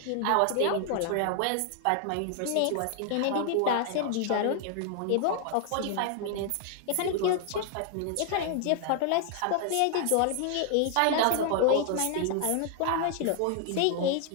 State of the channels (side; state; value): both; different; correlation 0.00